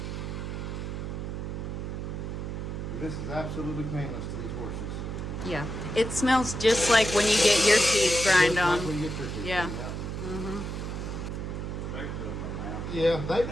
This is absolutely painless to these horses. Yeah. It smells just like when you get your teeth grind Just like on. when you get your teeth Yeah. done, Mm-hmm. Especially in my mouth. Yeah, they do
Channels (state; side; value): noise; right; hum, 5 dB below the sound